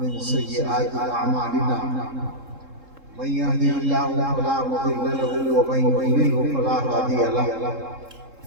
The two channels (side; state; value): left; late; 3.7 ms